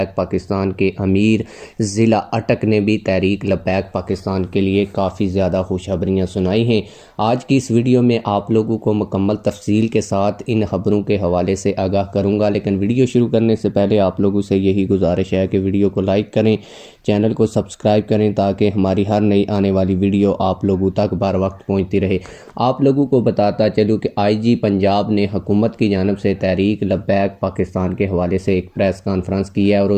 पाकिस्तान के अमीर ज़िला अटक ने भी तहरीक लब्बैक पाकिस्तान के लिए काफ़ी ज़्यादा खुशखबरियाँ सुनाई हैं। आज की इस वीडियो में आप लोगों को मुकम्मल तफसील के साथ इन खबरों के हवाले से आगाह करूंगा, लेकिन वीडियो शुरू करने से पहले आप लोगों से यही गुजारिश है कि वीडियो को लाइक करें, चैनल को सब्सक्राइब करें ताकि हमारी हर नई आने वाली वीडियो आप लोगों तक बर वक्त पहुँचती रहे। आप लोगों को बताता चलूँ कि IG पंजाब ने हुकूमत की जानब से तहरीक लब्बैक पाकिस्तान के हवाले से एक प्रेस कॉन्फ्रेंस की है और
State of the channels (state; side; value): identical; both; correlation 1.00